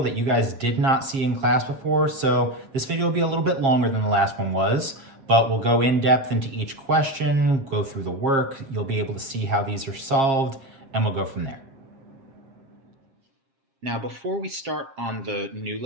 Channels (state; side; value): late; left; 7.4 ms